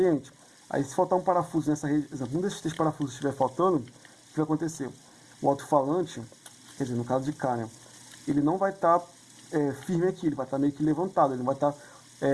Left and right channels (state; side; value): identical; both; correlation 1.00